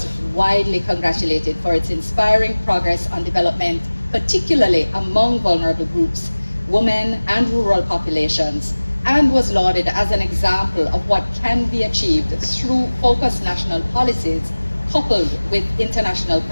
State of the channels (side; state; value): both; inverted; correlation -1.00